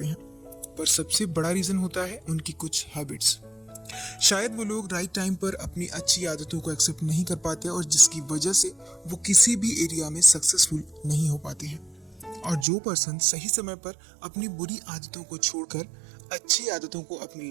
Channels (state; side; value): drops out; left; at 12.7 s